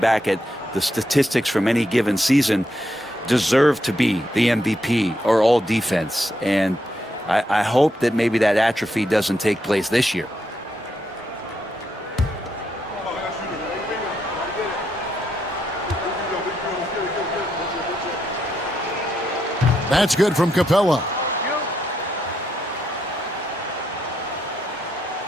at the statistics from any given season deserve to be the MVP or all defense, and I hope that maybe that atrophy doesn't take place this year. That's good from Capella.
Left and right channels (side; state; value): both; normal; correlation 0.80